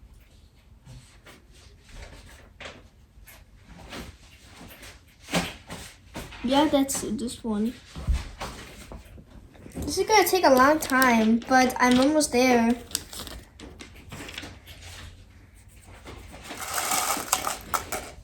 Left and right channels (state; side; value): identical; both; correlation 1.00